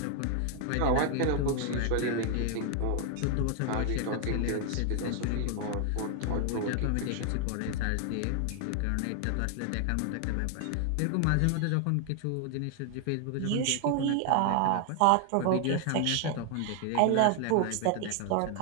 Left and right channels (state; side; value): different; both; correlation 0.00